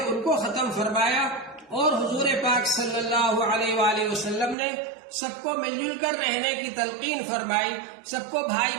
ان کو ختم فرمایا، اور حضور پاک صلی اللہ علیہ وآلہ وسلم نے سب کو مل جل کر رہنے کی تلقین فرمائی، سب کو بھائی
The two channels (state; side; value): drops out; left; at 4.5 s